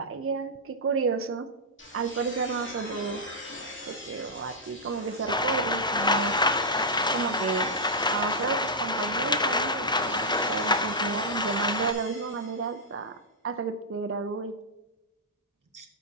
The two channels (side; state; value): both; normal; correlation -0.09